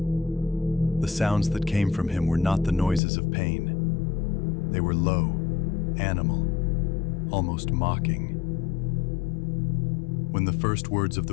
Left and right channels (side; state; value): right; drops out; at 3.0 s